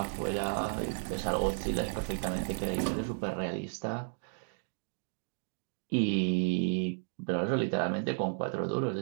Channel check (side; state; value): left; silent; digital silence